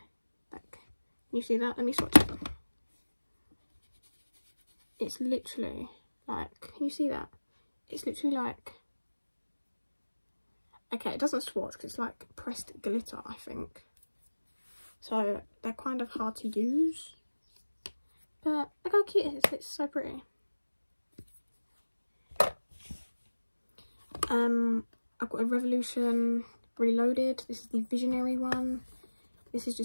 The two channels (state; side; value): inverted; both; correlation -1.00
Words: like, can you see that? Let me swatch it. It's literally like, can you see that? It's literally like, okay, it doesn't swatch because it's like pressed glitter, I think. So they're kind of hard to use. But look how cute it is. It's so pretty. I've got a Revolution Reloaded. This is the Visionary one. This is